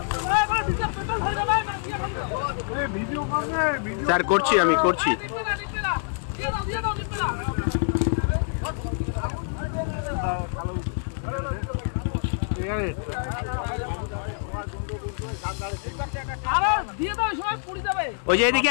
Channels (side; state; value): right; silent; 61 dB below the other